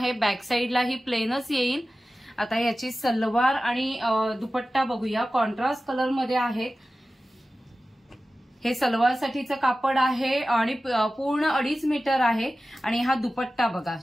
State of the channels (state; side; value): normal; both; correlation 0.95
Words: बॅक साइडला ही प्लेनच येईल। आता याची सलवार आणि दुपट्टा बघूया, कॉन्ट्रास्ट कलर मध्ये आहे। हे सलवार साठीचं कापड आहे आणि पूर्ण 2.5 मीटर आहे आणि हा दुपट्टा बघा,